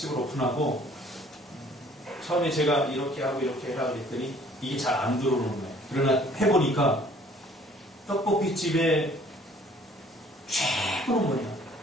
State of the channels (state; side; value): normal; both; correlation 0.56